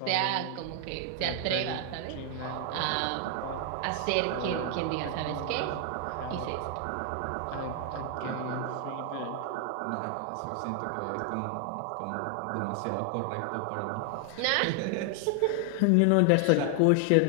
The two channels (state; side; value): different; both; correlation 0.00